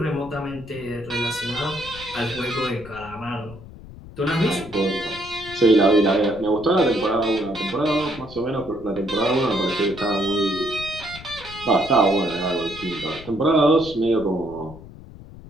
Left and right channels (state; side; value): noise; left; rumble, 17 dB below the sound